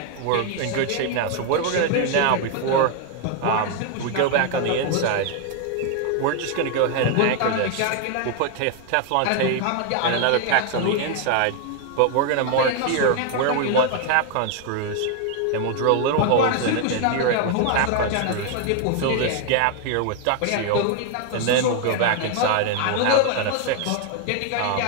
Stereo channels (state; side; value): different; both; correlation 0.00